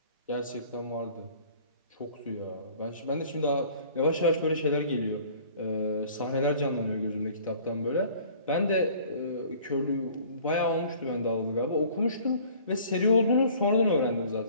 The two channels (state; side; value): inverted; both; correlation -0.51